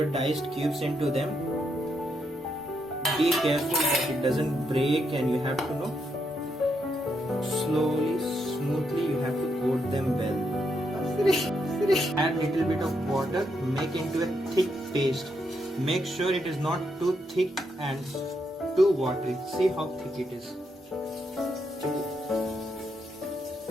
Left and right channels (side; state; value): both; normal; correlation 0.79